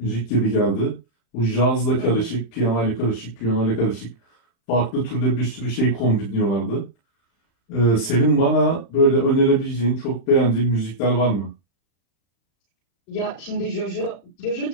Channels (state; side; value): late; right; 35 ms